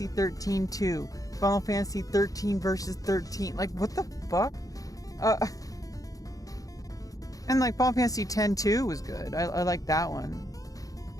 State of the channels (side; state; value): right; late; 0.17 ms